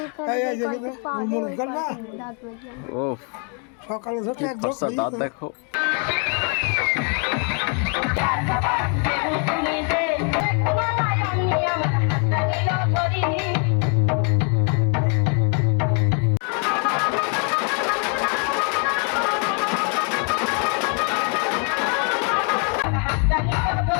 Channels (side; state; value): right; quieter; 39.4 dB